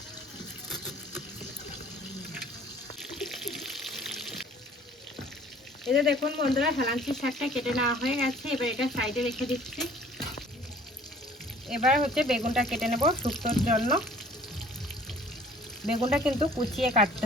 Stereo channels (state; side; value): normal; both; correlation 0.53